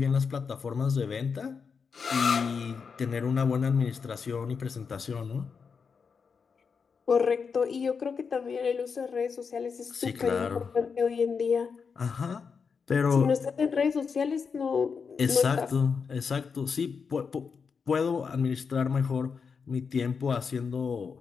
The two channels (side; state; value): right; quieter; 5.7 dB